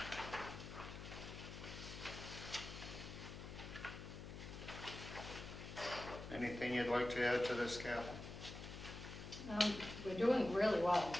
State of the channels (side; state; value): left; noise; hum, 10 dB below the sound